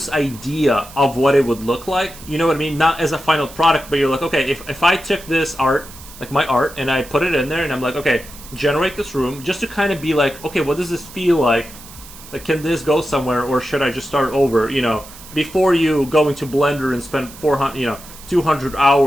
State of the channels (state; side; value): noise; right; hiss, 18 dB below the sound